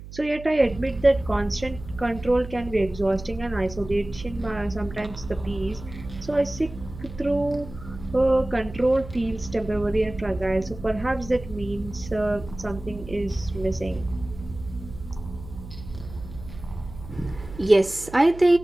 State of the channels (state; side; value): noise; right; hum, 14 dB below the sound